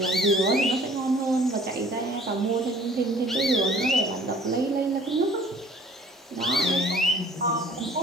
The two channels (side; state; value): both; normal; correlation 0.53